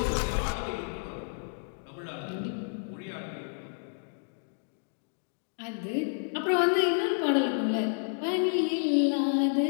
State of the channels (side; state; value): right; silent; digital silence